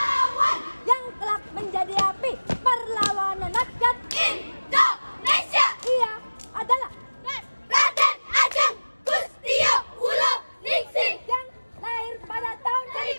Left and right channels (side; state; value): both; inverted; correlation -1.00